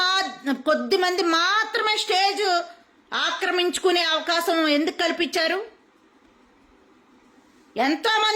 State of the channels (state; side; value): identical; both; correlation 1.00